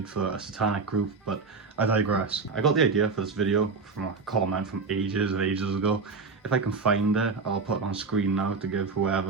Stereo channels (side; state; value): left; quieter; 4.5 dB